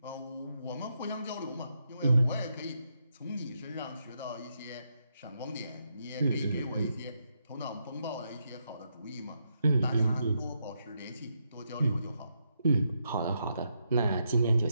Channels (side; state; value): both; inverted; correlation -0.81